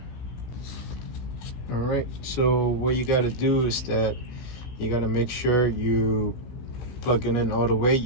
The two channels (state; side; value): late; right; 16 ms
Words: All right, so what you got to do is that you got to make sure you plug it in all the way.